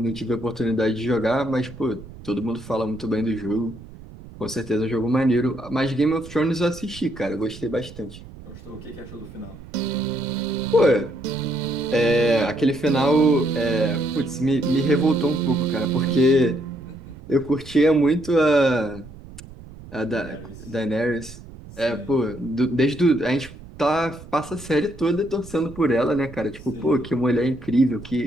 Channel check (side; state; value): right; noise; rumble, 17 dB below the sound